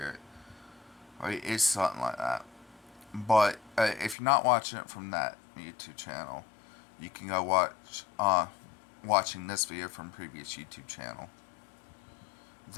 Right? It's something like that. But if you're not watching it from that YouTube channel, you can go watching this video from previous YouTube channel.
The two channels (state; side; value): drops out; right; at 4.2 s